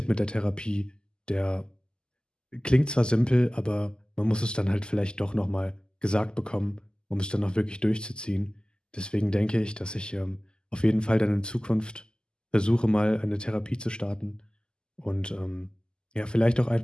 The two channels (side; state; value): right; late; 0.046 ms